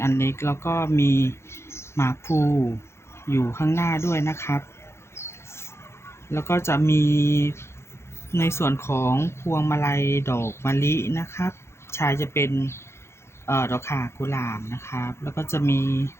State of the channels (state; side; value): late; right; 0.13 ms